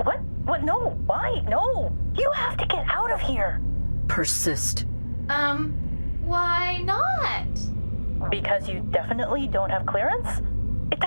What? What? No. Why? No. You have to get out of here. Persist. Why not? Because you definitely don't have clearance? It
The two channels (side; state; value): both; inverted; correlation -1.00